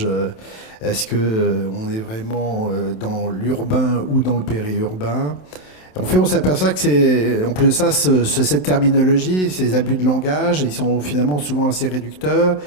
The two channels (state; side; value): late; right; 27 ms